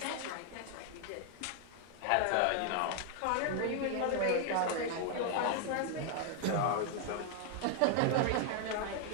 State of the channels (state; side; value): different; both; correlation 0.00